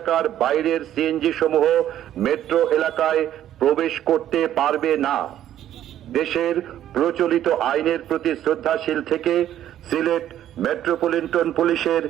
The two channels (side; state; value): left; quieter; 11.6 dB